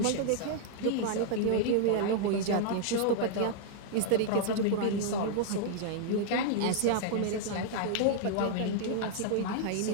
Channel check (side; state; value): both; different; correlation -0.01